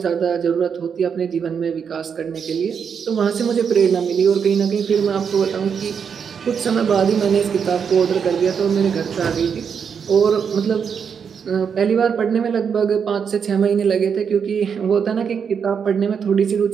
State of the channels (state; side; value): quieter; left; 6.9 dB